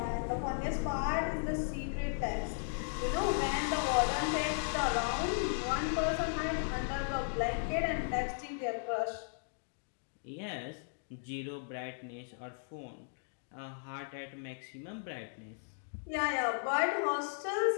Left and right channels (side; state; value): right; silent; digital silence